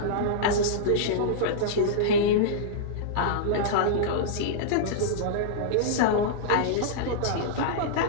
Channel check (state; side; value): different; both; correlation -0.02